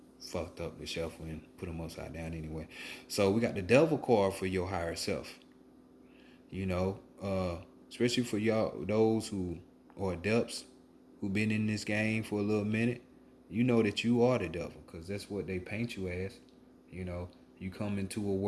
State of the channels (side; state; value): both; identical; correlation 1.00